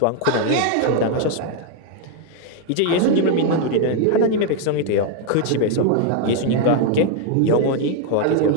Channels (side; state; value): both; different; correlation 0.00